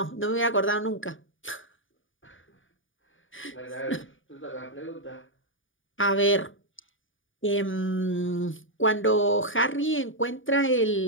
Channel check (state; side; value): late; right; 0.57 ms